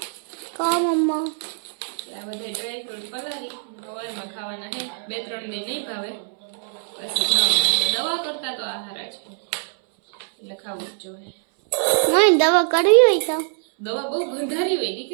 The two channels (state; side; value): silent; left; 63 dB below the other